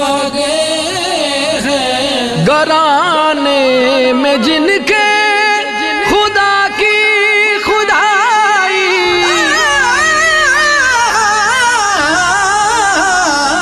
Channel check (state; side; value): identical; both; correlation 1.00